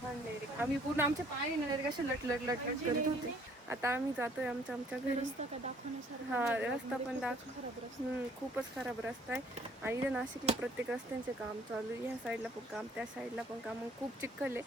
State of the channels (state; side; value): normal; both; correlation 0.60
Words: डायरेक्ट. आम्ही पूर्ण आमच्या पाय डायरेक्ट असे लटलट करत होते. आता आम्ही जातोय आमच्या घरी. हा रस्ता पण खूपच खराब रस्ता आहे. आणि इथे नाशिकला प्रत्येक रस्त्यांचे काम चालू आहे. ह्या साईडला पण काम, त्या साईडला पण काम, खूप चिखल